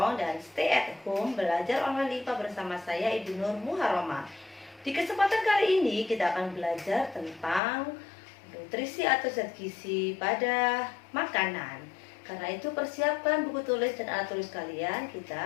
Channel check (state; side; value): drops out; right; at 7.6 s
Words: dan stay at home. Belajar online IPA bersama saya Ibu Nur Muharrama. Di kesempatan kali ini kita akan belajar tentang nutrisi atau zat gizi pada makanan. Karena itu persiapkan buku tulis dan alat tulis kalian,